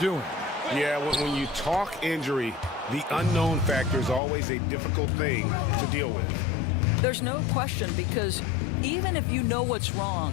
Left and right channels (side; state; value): right; drops out; at 4.2 s